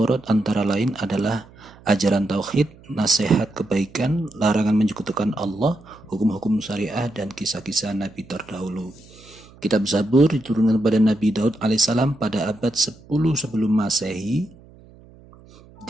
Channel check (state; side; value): noise; right; hum, 24 dB below the sound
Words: antara lain adalah ajaran tauhid, nasihat kebaikan, larangan menyekutukan Allah, hukum-hukum syariah, dan kisah-kisah Nabi terdahulu. Kitab Zabur diturunkan kepada Nabi Daud alaihissalam pada abad 10 sebelum Masehi.